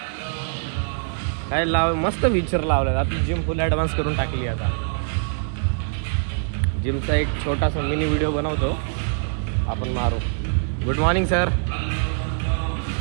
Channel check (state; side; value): silent; left; digital silence